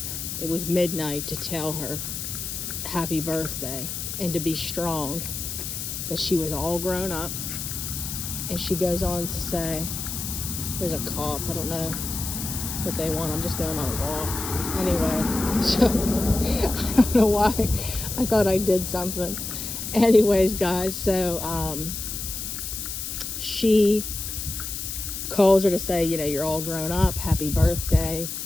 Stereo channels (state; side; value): noise; left; hiss, 5 dB below the sound